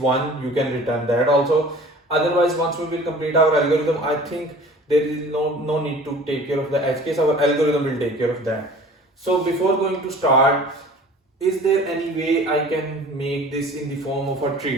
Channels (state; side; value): normal; both; correlation 0.45